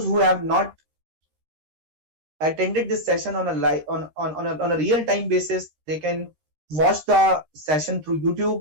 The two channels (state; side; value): late; left; 13 ms